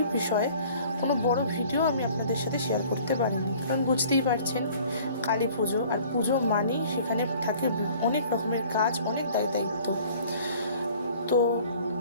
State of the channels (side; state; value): both; inverted; correlation -0.51